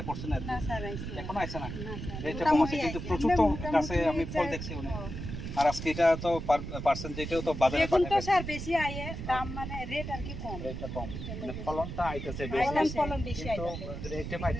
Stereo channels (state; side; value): noise; right; rumble, 7 dB below the sound